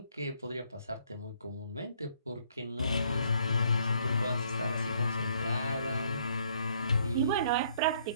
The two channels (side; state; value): both; inverted; correlation -0.66